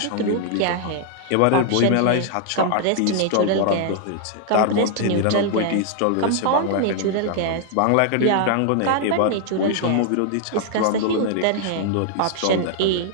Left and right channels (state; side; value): different; both; correlation 0.00